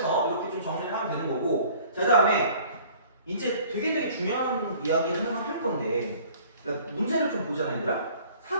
이렇게 좀 정리를 하면 되는 거고. 자, 그다음에 이제 되게 중요한 이야기를 하나 할 건데, 그러니까 문제를 좀 보잖아, 얘들아.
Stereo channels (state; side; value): inverted; both; correlation -0.52